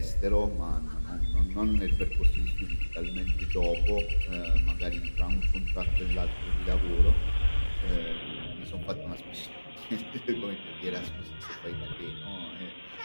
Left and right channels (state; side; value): inverted; both; correlation -1.00